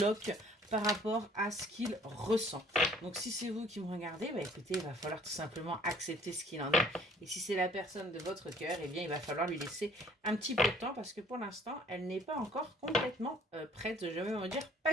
par rapport à ce qu'il ressent. Donc si c'est vous qui me regardez, écoutez, il va falloir tout simplement accepter ce qu'il en est. Et si c'est la personne de votre cœur, il va falloir lui laisser un petit peu de temps parce que pour l'instant, elle n'est pas encore complètement prête. Je vais me dire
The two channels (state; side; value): normal; both; correlation 0.56